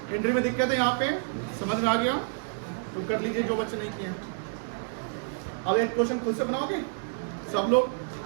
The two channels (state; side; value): silent; left; digital silence